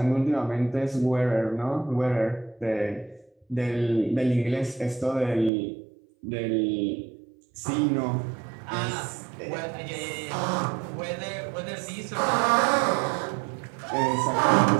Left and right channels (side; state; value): left; drops out; at 5.5 s